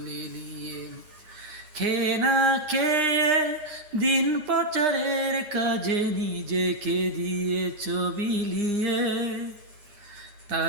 লেলিয়ে। খেয়ে না খেয়ে দিন প্রচারের কাজে নিজেকে দিয়েছ বিলিয়ে।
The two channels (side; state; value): left; late; 9.8 ms